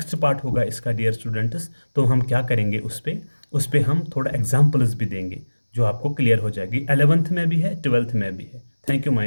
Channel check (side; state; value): both; inverted; correlation -1.00